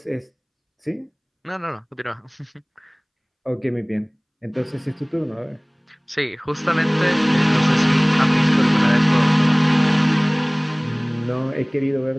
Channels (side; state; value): both; identical; correlation 1.00